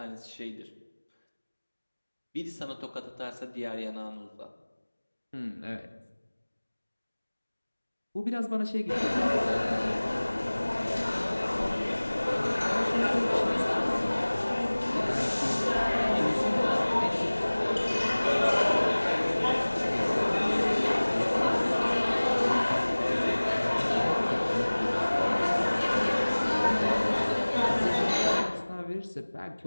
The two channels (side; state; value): both; inverted; correlation -1.00